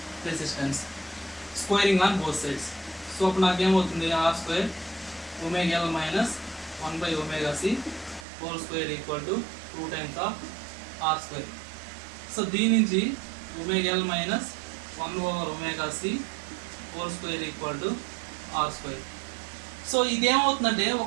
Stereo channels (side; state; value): left; drops out; at 8.2 s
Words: resistance, squaring on both sides. So అప్పుడు నాకేమవుతుంది, R² ωL minus 1/ωc whole square equal to 2 times of R². So దీని నుంచి ωL minus 1/ωc whole square equal to R². So ఇదేమవుతుందంటే ఒక